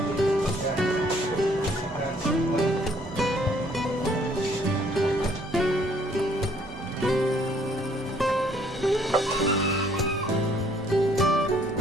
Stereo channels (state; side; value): noise; right; hum, 17 dB below the sound